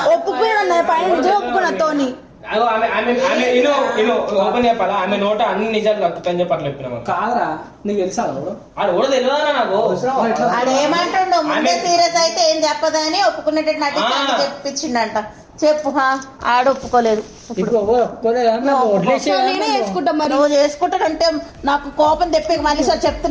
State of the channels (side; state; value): both; identical; correlation 1.00